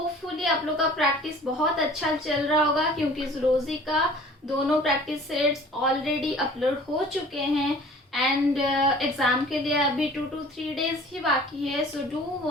आप लोग का practice बहुत अच्छा चल रहा होगा क्योंकि zoology का दोनों प्रैक्टिस सेट्स ऑलरेडी अपलोड हो चुके हैं एंड एग्जाम के लिए अभी 2 to 3 डेज ही बाकी है. So do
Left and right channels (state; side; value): normal; both; correlation 0.47